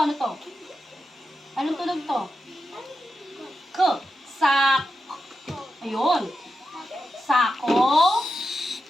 Anong tunog to? K. Sak. Ayun. Sako.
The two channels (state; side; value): normal; both; correlation 0.89